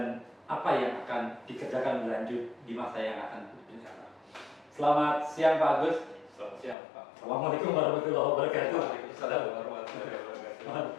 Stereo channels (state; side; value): drops out; right; at 6.8 s